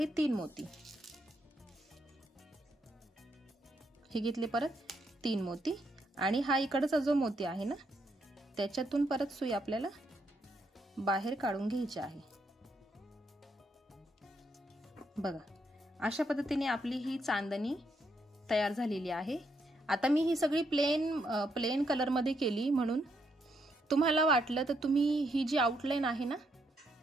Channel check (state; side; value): normal; both; correlation 0.77